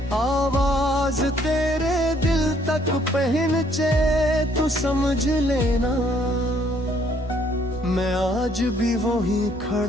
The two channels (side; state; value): both; normal; correlation 0.65